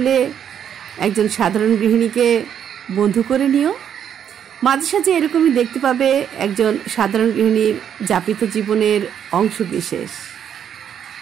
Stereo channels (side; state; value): left; quieter; 8.9 dB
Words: একজন সাধারণ গৃহিণীকে বন্ধু করে নিও। মাঝে সাঝে এরকমই দেখতে পাবে একজন সাধারণ গৃহিণীর যাপিত জীবনের অংশ বিশেষ।